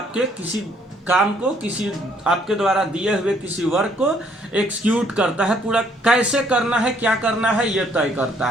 किसी काम को, किसी आपके द्वारा दिए हुए किसी वर्क को एक्सिक्यूट करता है, पूरा कैसे करना है, क्या करना है, यह तय करता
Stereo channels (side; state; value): both; normal; correlation 0.65